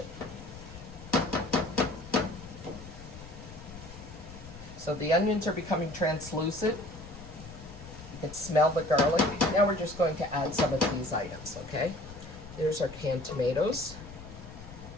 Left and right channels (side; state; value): left; noise; rumble, 15 dB below the sound